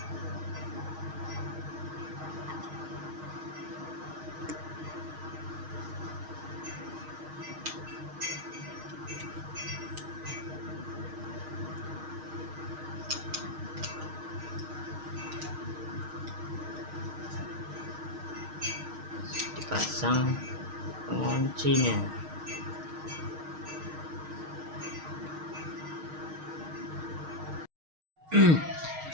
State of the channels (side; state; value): left; late; 6.4 ms